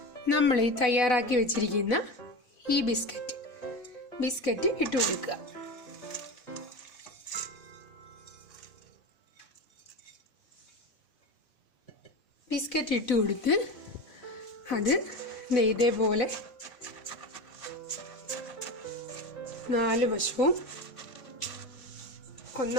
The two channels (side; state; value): right; late; 4.0 ms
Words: നമ്മൾ ഈ തയ്യാറാക്കി വെച്ചിരിക്കുന്ന ഈ ബിസ്ക്കറ്റ് ഇട്ട് കൊടുക്കുക. ബിസ്ക്കറ്റ് ഇട്ട് കൊടുത്ത് അത് ഇതേപോലെ 4 വശവും